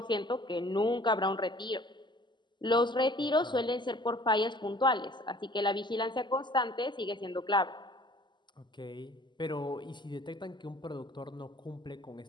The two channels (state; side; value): late; right; 0.22 ms